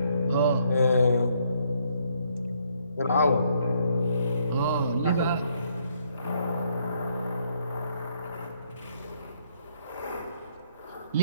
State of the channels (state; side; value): inverted; both; correlation -0.70